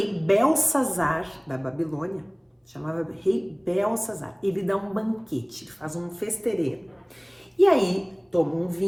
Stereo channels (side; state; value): both; identical; correlation 1.00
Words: Belsazar da Babilônia, chamava rei Belsazar, ele dá um banquete, ele faz um festeirê. E aí toma um